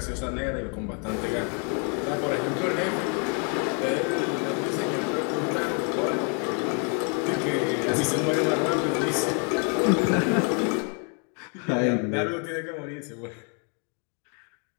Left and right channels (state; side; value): quieter; right; 39.0 dB